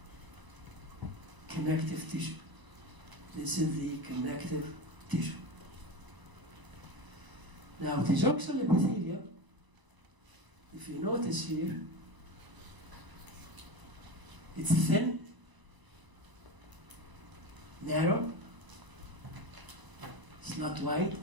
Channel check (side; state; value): left; late; 1.0 ms